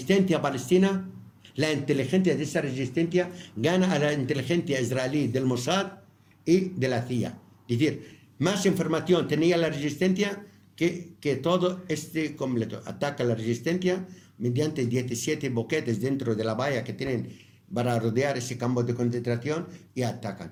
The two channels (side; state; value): both; identical; correlation 1.00